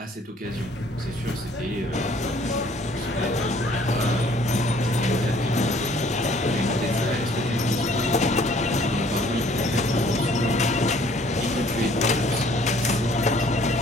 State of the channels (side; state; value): both; normal; correlation 0.58